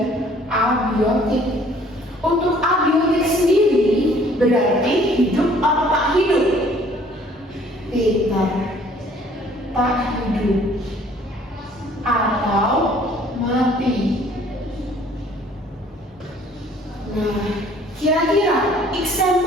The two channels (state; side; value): normal; both; correlation 0.57